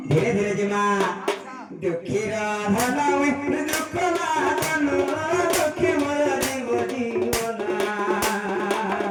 ধীরে ধীরে জিমা দুঃখীর ধনময় দুঃখ না জন দুঃখী মোর জীব জীবন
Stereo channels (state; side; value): identical; both; correlation 1.00